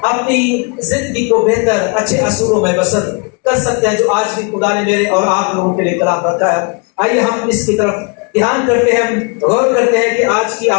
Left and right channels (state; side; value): quieter; right; 33.3 dB